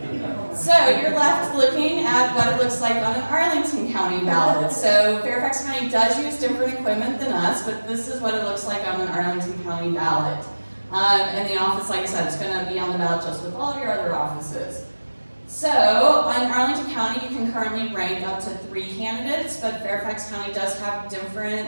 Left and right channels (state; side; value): inverted; both; correlation -1.00